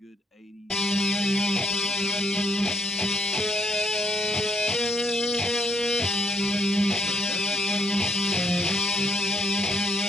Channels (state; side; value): normal; both; correlation 0.70